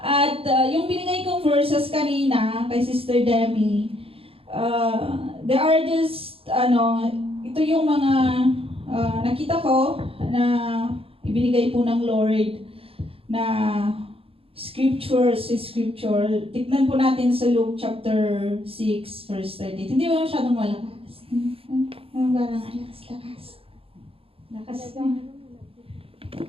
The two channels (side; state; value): left; late; 0.27 ms